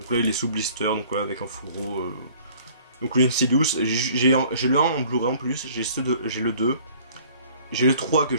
là il est sous blister, donc voilà, avec un fourreau. Donc le Insidious, j'ai le 1 en Blu-ray en plus, j'ai le 2. J'ai le 3 que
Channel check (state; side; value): inverted; both; correlation -0.53